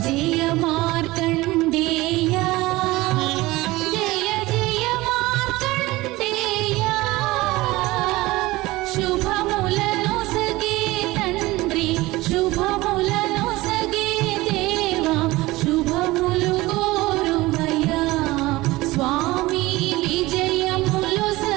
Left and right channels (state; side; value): quieter; left; 19.6 dB